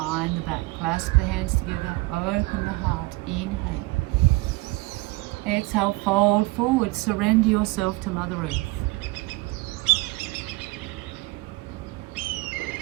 the back. Clasp the hands together. Open the heart. Inhale. Exhale, fold forward. Surrender yourself to Mother Earth.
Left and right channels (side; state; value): left; quieter; 22.5 dB